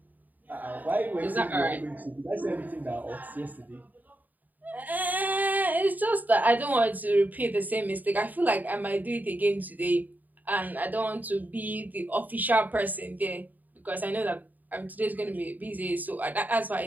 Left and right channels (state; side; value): late; left; 0.083 ms